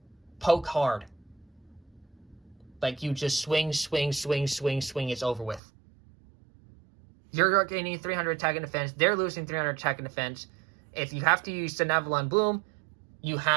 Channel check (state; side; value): drops out; left; at 5.6 s